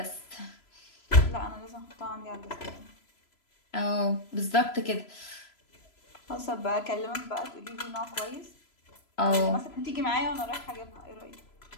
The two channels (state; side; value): late; right; 3.0 ms